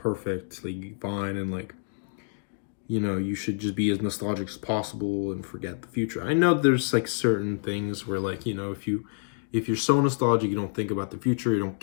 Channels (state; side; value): silent; right; digital silence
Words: like fine, and like, you know, you should just be as nostalgic as possible and forget the future. I know there's like certain things where like, you know, if you're so nostalgic, you don't think about the future, you don't